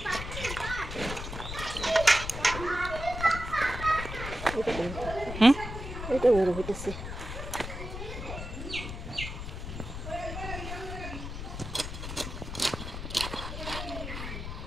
এটা বড় হইতেছে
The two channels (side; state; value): left; noise; rumble, 7 dB below the sound